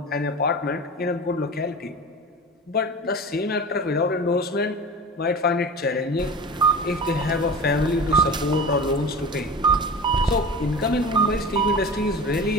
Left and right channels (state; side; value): normal; both; correlation 0.33